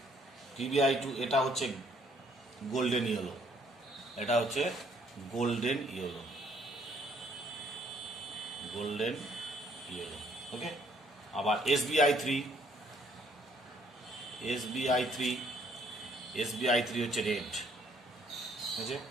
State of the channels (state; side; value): normal; both; correlation 0.65